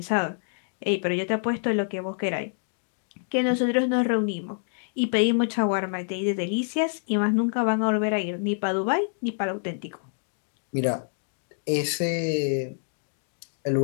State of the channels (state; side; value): silent; right; digital silence